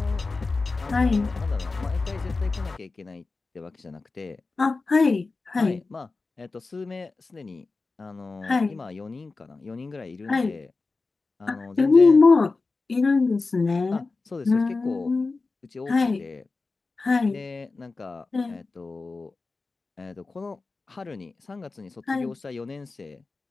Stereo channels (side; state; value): right; quieter; 3.8 dB